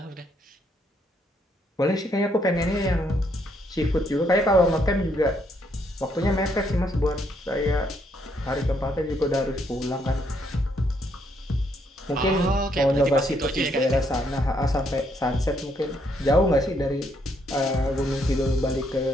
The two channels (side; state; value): both; normal; correlation 0.72